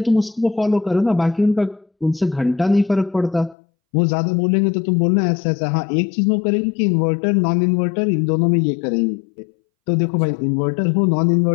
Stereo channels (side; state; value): right; drops out; at 3.6 s